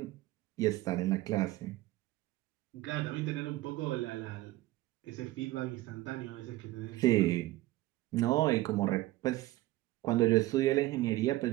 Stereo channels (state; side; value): quieter; left; 17.3 dB